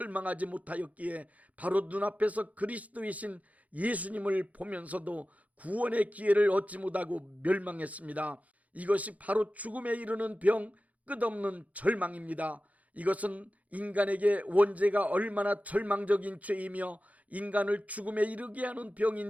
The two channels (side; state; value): left; late; 0.071 ms